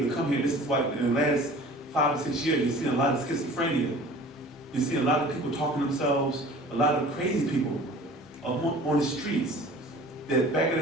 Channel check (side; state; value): both; normal; correlation 0.45